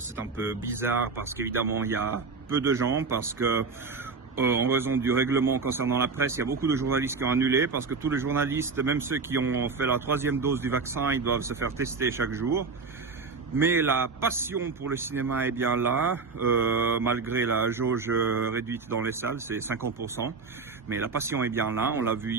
est un peu bizarre parce qu'évidemment il y a peu de gens, parce que en raison du règlement concernant la presse, il y a beaucoup de journalistes qui ont annulé parce que tous les journalistes, même ceux qui ont fait la 3e dose du vaccin, ils doivent se faire tester chaque jour. Mais la passion pour le cinéma est bien là, malgré la jauge réduite dans les salles, c'est 50%. Mais la passion est bien là, on l'a vu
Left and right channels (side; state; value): left; quieter; 4.6 dB